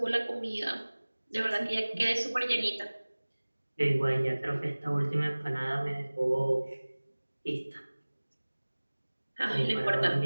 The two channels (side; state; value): both; inverted; correlation -1.00